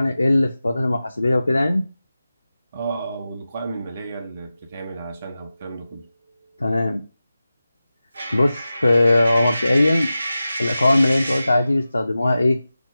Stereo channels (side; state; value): both; inverted; correlation -0.94